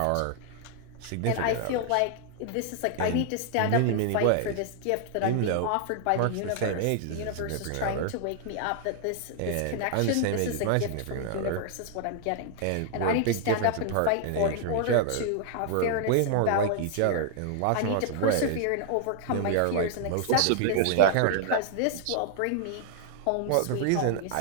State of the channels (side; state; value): both; different; correlation -0.01